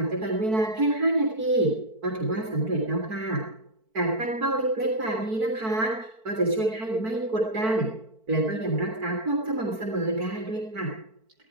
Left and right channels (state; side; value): late; left; 4.5 ms